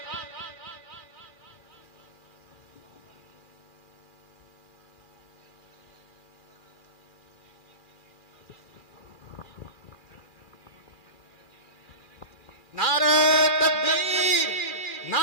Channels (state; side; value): late; right; 2.4 ms